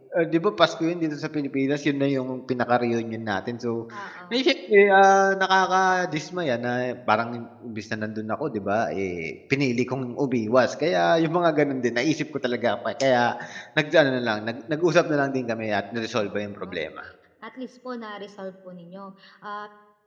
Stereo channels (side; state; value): both; identical; correlation 1.00